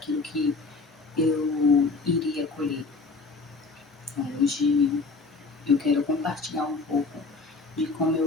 que eu iria colher. Hoje eu quero compartilhar um pouco de como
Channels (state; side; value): quieter; right; 3.9 dB